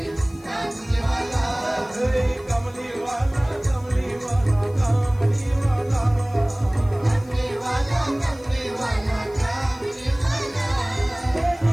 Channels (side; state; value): left; noise; hiss, 27 dB below the sound